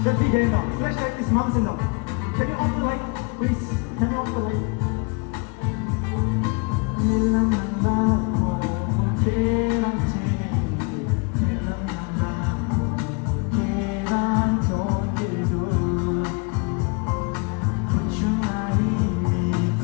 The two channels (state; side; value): quieter; right; 31.8 dB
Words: Just be there now. Flashlight is mountain now. Can you off the light, please? Can you off the light?